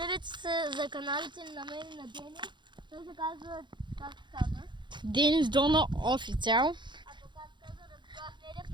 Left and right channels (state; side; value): late; left; 0.23 ms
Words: се за каналите на мен и на Денис. Той се казва, как се казва? Денис Дона официал. А то как се казва, Радослав Недев